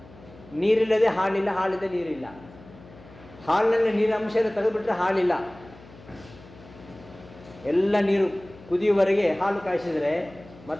ನೀರಿಲ್ಲದೆ ಹಾಲಿಲ್ಲ, ಹಾಲಿದೆ ನೀರಿಲ್ಲ. ಹಾಲಿನಲ್ಲಿ ನೀರಿನ ಅಂಶ ತೆಗೆದುಬಿಟ್ರೆ ಹಾಲಿಲ್ಲ. ಎಲ್ಲ ನೀರು ಕುದಿಯುವವರೆಗೆ ಹಾಲು ಕಾಯಿಸಿದರೆ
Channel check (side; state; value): left; noise; hum, 21 dB below the sound